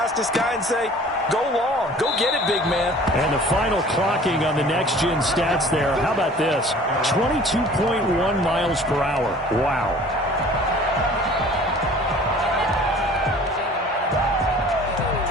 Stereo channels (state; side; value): normal; both; correlation 0.48